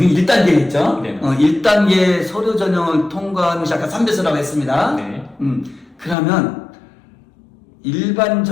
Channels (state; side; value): drops out; right; at 6.2 s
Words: 있죠? 네. 1단계 서류 전형을 통과하는 것이 아까 3배수라고 했습니다. 네. 그러면 일반